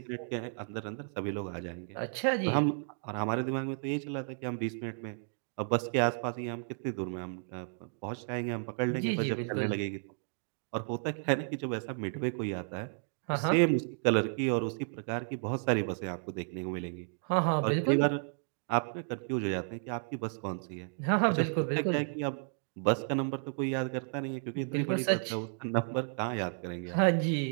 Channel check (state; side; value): silent; left; 56 dB below the other